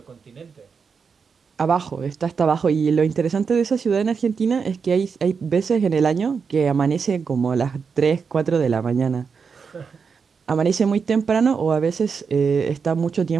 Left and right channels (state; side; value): quieter; left; 5.7 dB